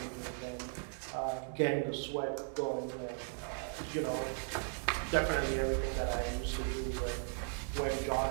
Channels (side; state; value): left; silent; 53 dB below the other